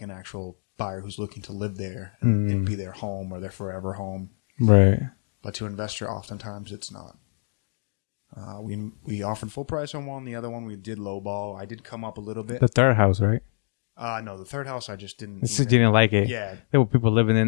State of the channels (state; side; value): silent; right; digital silence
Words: actual buyer who's looking to live there and it'd be their home or their forever home. Right. But to an investor, oftentimes it's not. We offered full price on one. The other one we did lowball. I did come up a little bit. The third house, right? No, the third house I just didn't Just didn't like it. Yeah. There were people living